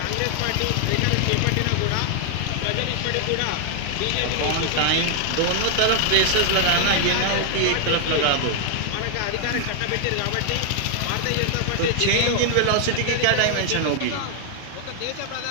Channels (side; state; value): both; different; correlation 0.00